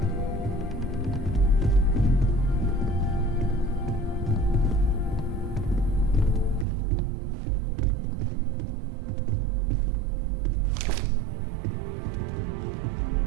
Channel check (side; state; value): left; drops out; at 6.7 s